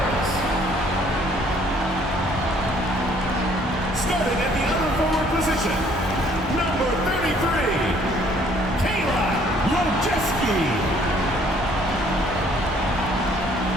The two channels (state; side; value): normal; both; correlation 0.61